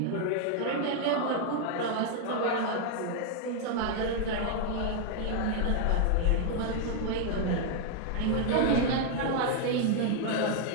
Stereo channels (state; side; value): different; both; correlation 0.00